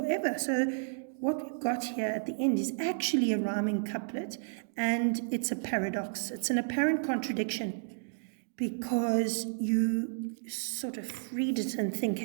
So what we've got here at the end is actually a rhyming couplet, and it's a paradox. It's an apparent contradiction. because you sort of read it and think,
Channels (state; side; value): silent; left; digital silence